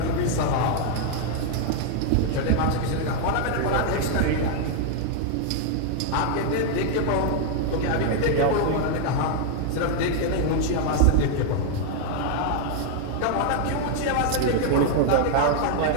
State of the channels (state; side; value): different; both; correlation 0.00